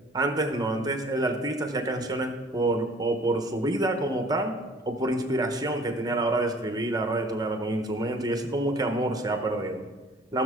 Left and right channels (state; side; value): normal; both; correlation 0.52